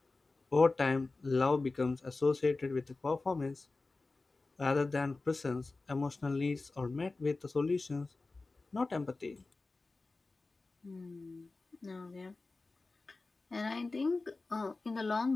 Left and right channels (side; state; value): right; quieter; 3.5 dB